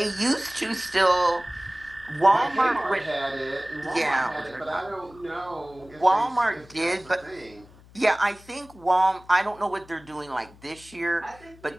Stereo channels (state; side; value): noise; left; hum, 24 dB below the sound